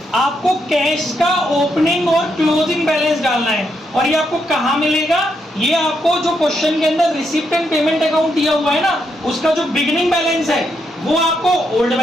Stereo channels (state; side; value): normal; both; correlation 0.79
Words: आपको कैश का ओपनिंग और क्लोजिंग बैलेंस डालना है। और ये आपको कहाँ मिलेगा? ये आपको जो क्वेश्चन के अंदर रिसीप्ट एंड पेमेंट अकाउंट दिया हुआ है ना, उसका जो बिगिनिंग बैलेंस है वो आपको ओल्ड